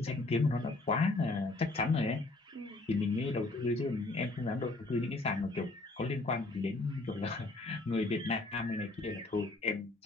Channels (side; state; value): right; quieter; 3.0 dB